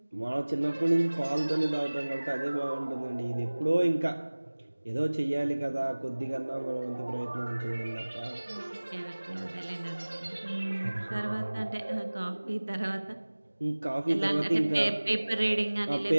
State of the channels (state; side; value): inverted; both; correlation -1.00